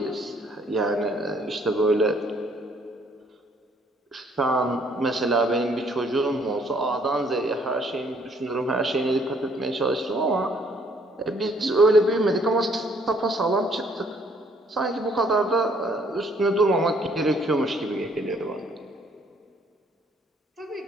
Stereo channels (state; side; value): normal; both; correlation 0.64